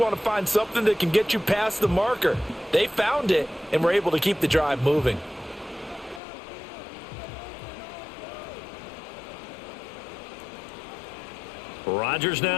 to find something that can get you past the marker. They found it and were able to keep the drive moving. Rodgers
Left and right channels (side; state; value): right; drops out; at 6.2 s